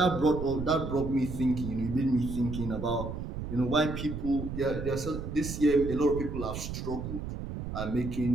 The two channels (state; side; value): noise; right; rumble, 6 dB below the sound